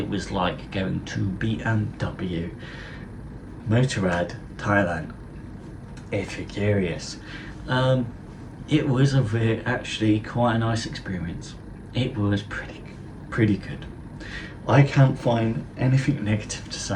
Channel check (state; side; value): identical; both; correlation 1.00